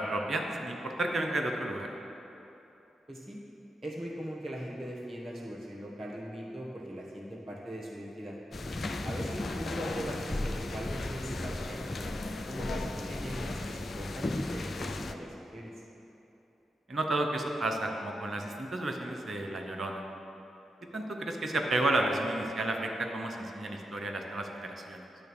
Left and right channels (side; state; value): both; normal; correlation 0.85